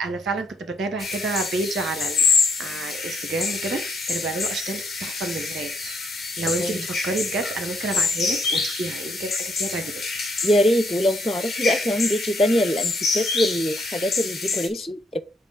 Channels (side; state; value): both; normal; correlation 0.72